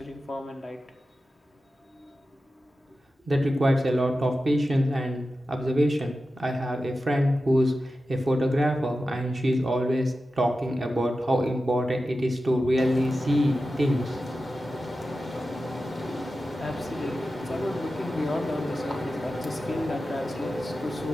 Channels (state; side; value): normal; both; correlation 0.93